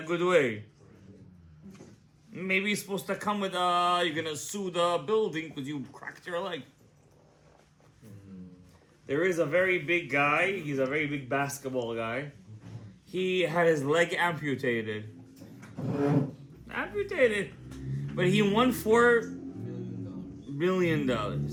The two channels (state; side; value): identical; both; correlation 1.00